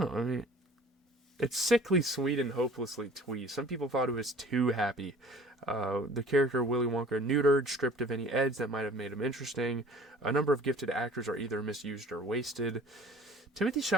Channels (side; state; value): both; normal; correlation 0.48